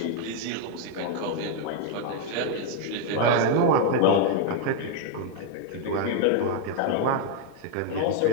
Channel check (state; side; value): different; both; correlation 0.00